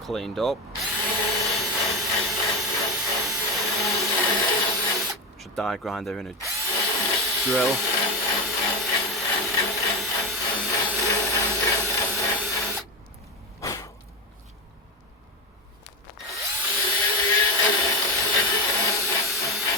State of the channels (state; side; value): normal; both; correlation 0.18